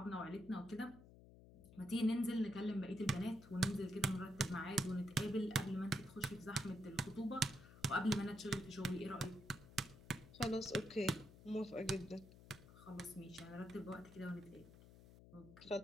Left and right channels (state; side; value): noise; left; hum, 19 dB below the sound